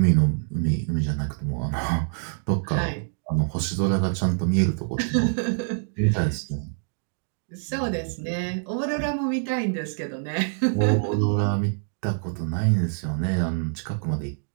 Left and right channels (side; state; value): left; silent; digital silence